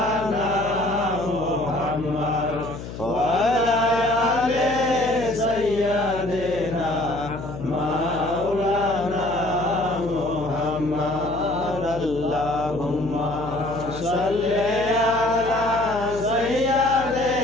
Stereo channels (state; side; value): noise; left; hum, 10 dB below the sound